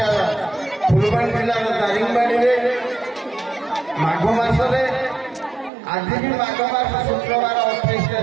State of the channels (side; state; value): left; drops out; at 5.7 s